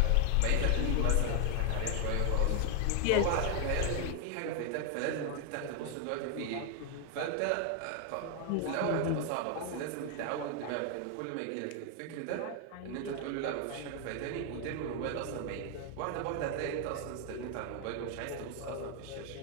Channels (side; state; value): both; different; correlation 0.00